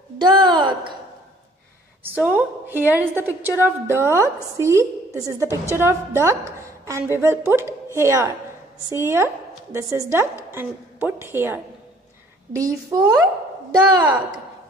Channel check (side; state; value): both; normal; correlation 0.58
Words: duck. So here is the picture of duck. See, this is the picture of duck and we will put here. See here, this is duck and put here. D for duck.